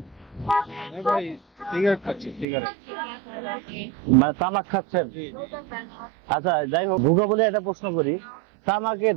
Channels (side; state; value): left; drops out; at 2.5 s